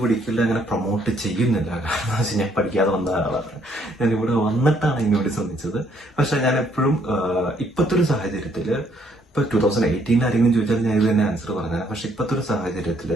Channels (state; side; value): normal; both; correlation 0.68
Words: പഠിക്കില്ല, അങ്ങനെ പ്രൊമോട്ട് ചെയ്യുന്നില്ല. കാരണം എന്ന് വെച്ചാൽ ഞാൻ പഠിക്കാതെ വന്ന ആളാണ്. ഞാൻ ഇവിടെ വന്നിട്ടാണ് ഇതിനുവേണ്ടി ശ്രമിച്ചത്. പക്ഷെ ഞാൻ എപ്പോഴും ഇപ്പോഴത്തെ ഒരു സാഹചര്യത്തിൽ, ഇപ്പൊ 2018 ആരെങ്കിലും ചോദിച്ചാൽ ഞാൻ ഇത് തന്നെ ആൻസർ പറഞ്ഞത്. പക്ഷെ ഇപ്പോഴത്തെ ഒരു സാഹചര്യത്തിൽ